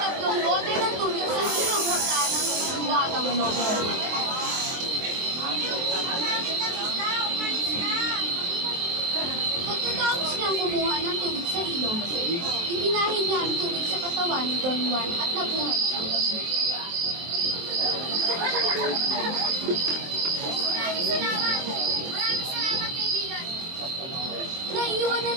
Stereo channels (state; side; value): late; left; 23 ms